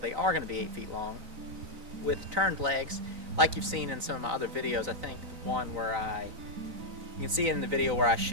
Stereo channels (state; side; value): late; left; 3.9 ms